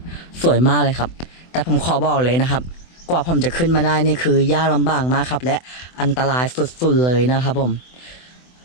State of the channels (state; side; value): late; right; 24 ms